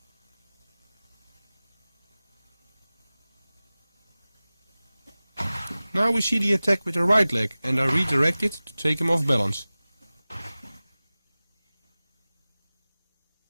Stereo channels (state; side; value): inverted; both; correlation -0.98